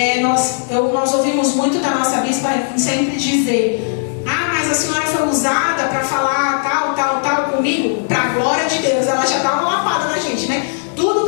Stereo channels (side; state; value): right; silent; digital silence